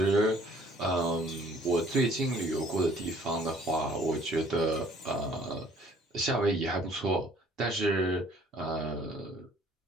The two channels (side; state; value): both; normal; correlation 0.57